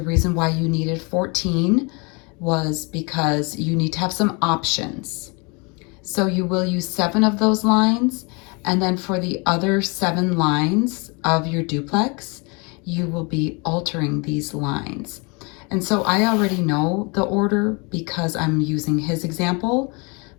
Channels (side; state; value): right; quieter; 30.7 dB